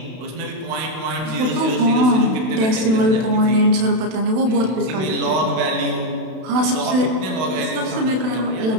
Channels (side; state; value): left; late; 32 ms